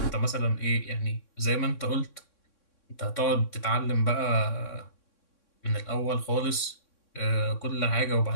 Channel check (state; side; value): late; right; 3.6 ms